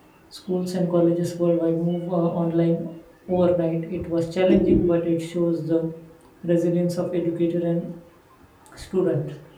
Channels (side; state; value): both; identical; correlation 1.00